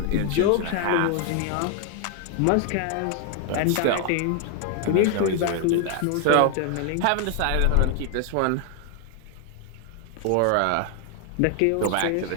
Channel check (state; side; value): different; both; correlation 0.00